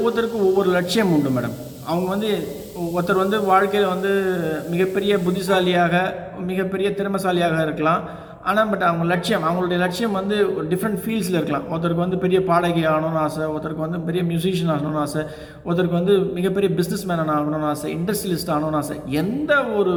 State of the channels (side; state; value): both; identical; correlation 1.00